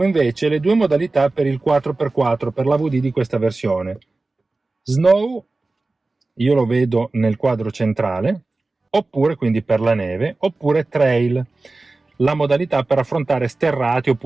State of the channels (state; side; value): quieter; left; 3.3 dB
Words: invece le due modalità per il 4x4 per l'AVD di questa versione. Snow, io lo vedo nel quadro centrale, oppure quindi per la neve, oppure trail, la modalità per affrontare sterrati